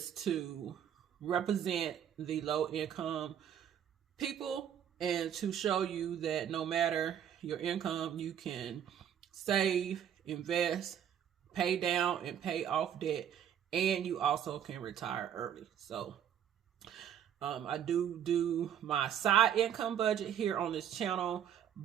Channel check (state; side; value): quieter; left; 9.5 dB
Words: to represent the low income people and to show you that no matter your income, you can save, invest, pay down and pay off debt, and you also can retire early. So I do my side income budget here on this channel,